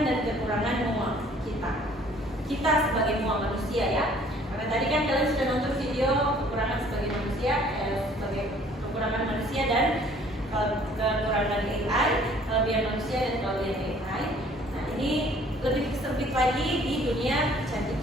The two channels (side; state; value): both; normal; correlation 0.56